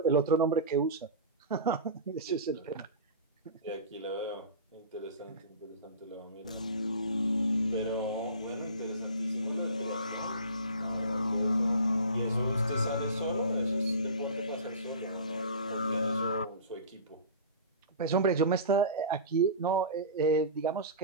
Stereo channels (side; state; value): both; inverted; correlation -0.34